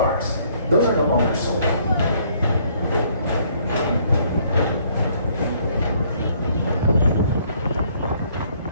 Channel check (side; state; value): both; inverted; correlation -0.64